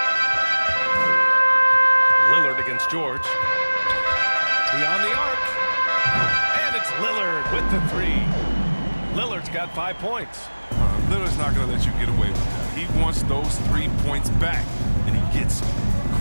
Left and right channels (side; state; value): both; inverted; correlation -1.00